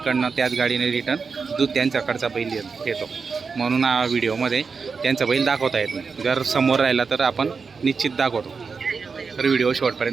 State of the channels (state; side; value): quieter; left; 5.1 dB